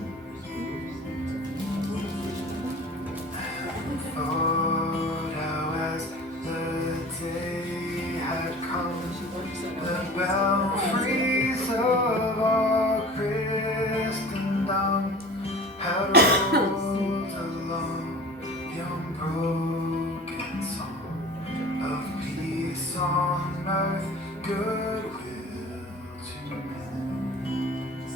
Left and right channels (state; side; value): normal; both; correlation 0.40